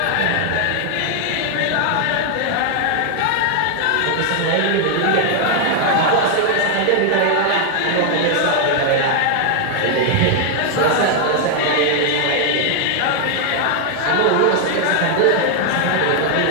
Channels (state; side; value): different; both; correlation 0.00